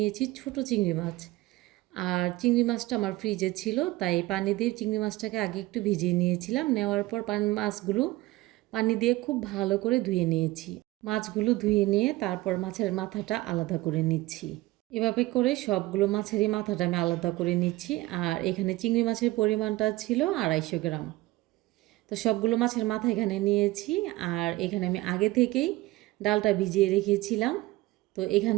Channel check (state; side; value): quieter; left; 18.9 dB